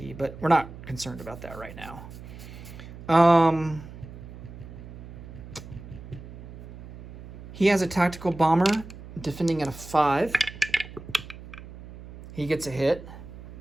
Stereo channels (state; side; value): noise; right; hum, 14 dB below the sound